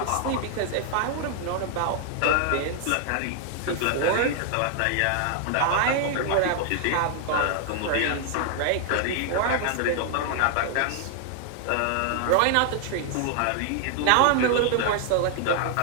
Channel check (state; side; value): different; both; correlation 0.00